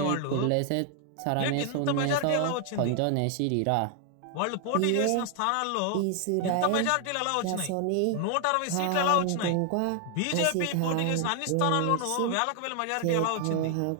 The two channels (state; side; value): different; both; correlation 0.00